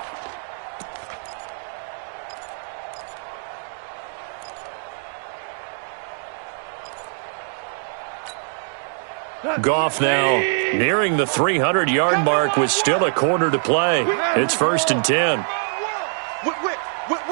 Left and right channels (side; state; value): left; silent; digital silence